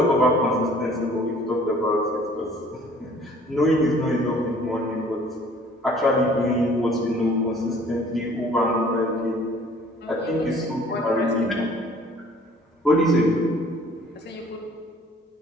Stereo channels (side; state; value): both; normal; correlation 0.54